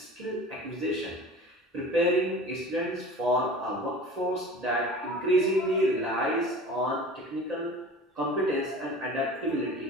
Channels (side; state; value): both; normal; correlation 0.39